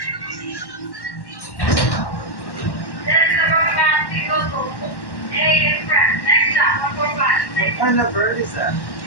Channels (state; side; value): late; right; 1.1 ms